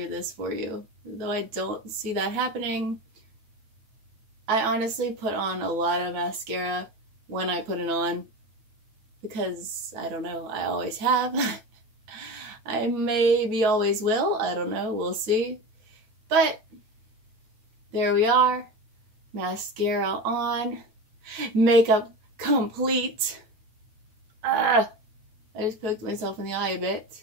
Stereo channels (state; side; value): late; left; 9.2 ms